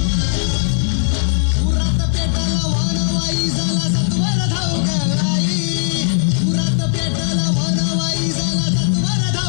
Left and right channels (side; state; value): right; silent; 57 dB below the other